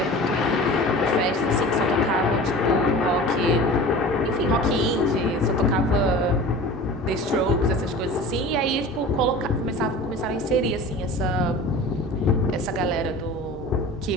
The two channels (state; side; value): normal; both; correlation 0.38